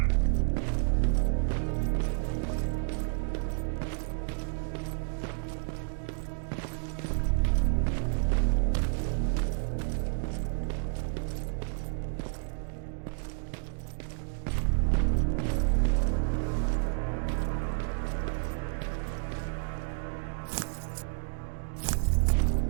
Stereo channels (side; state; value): left; silent; 58 dB below the other